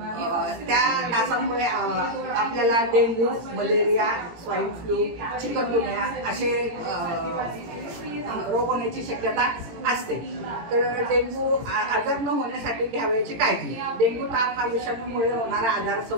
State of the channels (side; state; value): left; late; 18 ms